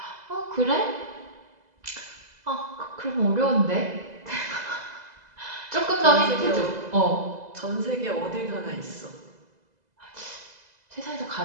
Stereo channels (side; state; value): left; late; 2.0 ms